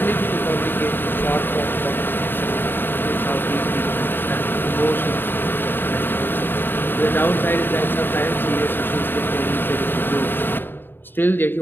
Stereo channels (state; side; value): late; right; 0.097 ms